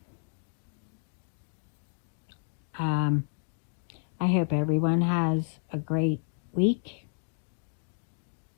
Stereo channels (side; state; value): right; silent; 57 dB below the other